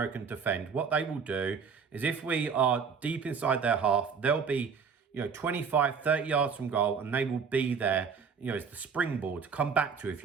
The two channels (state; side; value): quieter; left; 6.0 dB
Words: and defend, what they will do is if we are deep inside their half, they'll be, you know, 25, 30 yards from goal, and they will be there, you know, it's the springboard to come back to. If